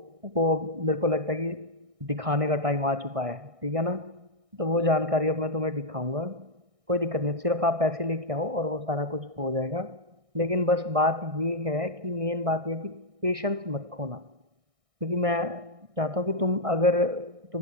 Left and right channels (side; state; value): left; late; 1.6 ms